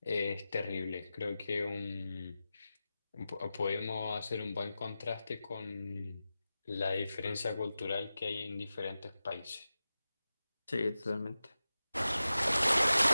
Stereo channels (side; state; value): both; inverted; correlation -0.94